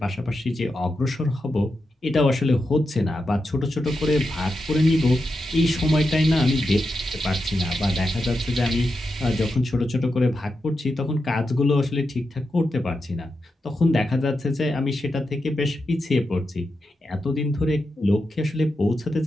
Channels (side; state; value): both; normal; correlation 0.88